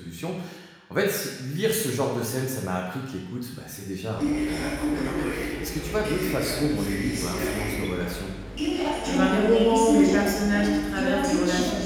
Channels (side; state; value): both; identical; correlation 1.00